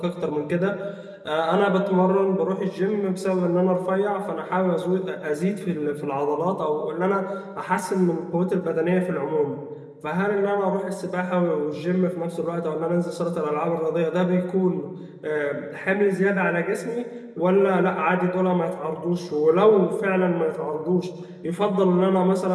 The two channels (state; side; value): identical; both; correlation 1.00